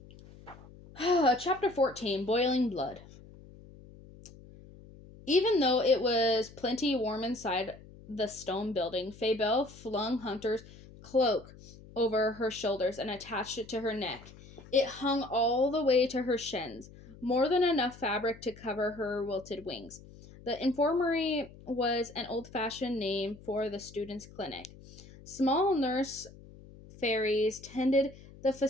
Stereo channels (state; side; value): noise; left; hum, 20 dB below the sound